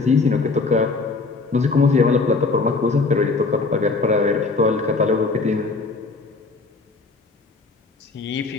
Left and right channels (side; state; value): right; quieter; 3.9 dB